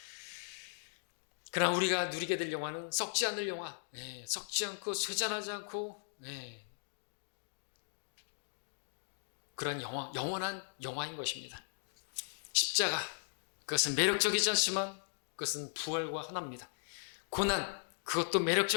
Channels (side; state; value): right; silent; digital silence